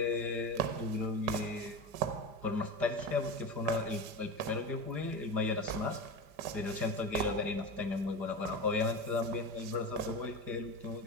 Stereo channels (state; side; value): late; left; 5.2 ms